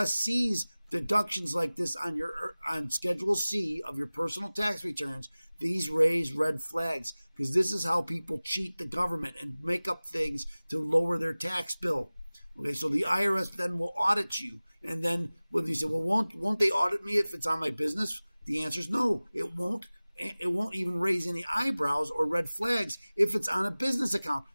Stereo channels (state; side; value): inverted; both; correlation -0.99